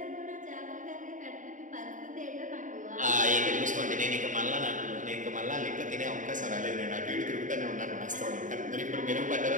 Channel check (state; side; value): late; left; 0.37 ms